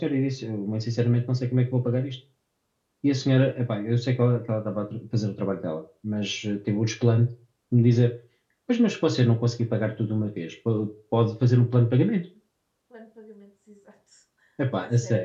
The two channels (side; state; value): both; identical; correlation 1.00